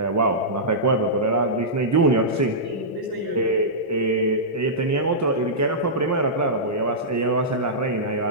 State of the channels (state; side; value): normal; both; correlation -0.15